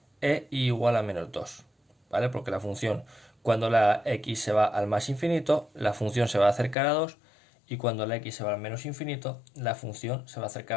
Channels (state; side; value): drops out; right; at 6.8 s